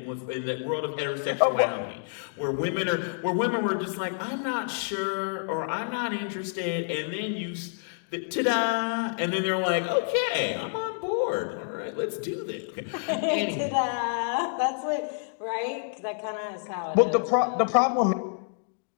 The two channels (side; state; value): right; silent; digital silence